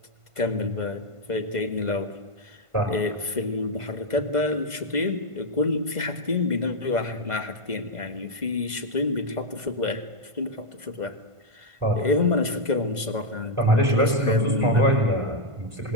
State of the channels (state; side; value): late; left; 1.5 ms